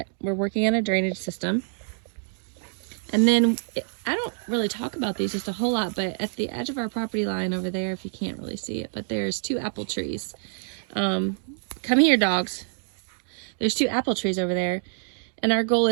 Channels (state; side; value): silent; left; digital silence